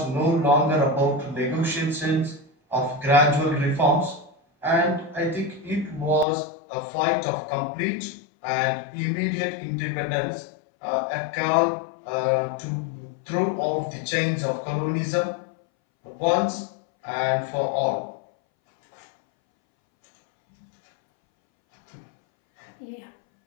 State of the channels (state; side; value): drops out; right; at 6.2 s